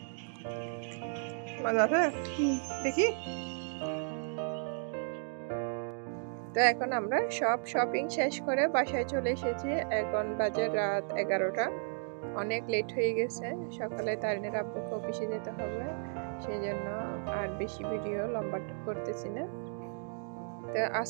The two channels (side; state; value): left; silent; 55 dB below the other